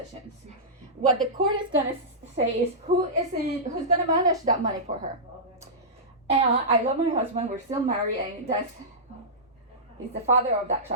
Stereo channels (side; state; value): both; normal; correlation -0.16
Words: What the court is gonna say is who's gonna manage that money for her. And I love my husband. We're still married, and he's the father of that